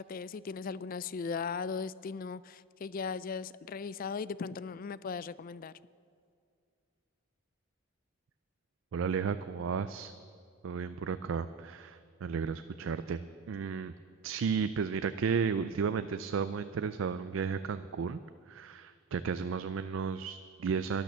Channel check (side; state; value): left; quieter; 3.7 dB